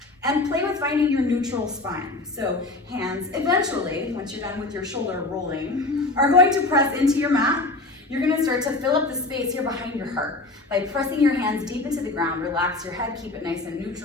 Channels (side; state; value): right; quieter; 3.1 dB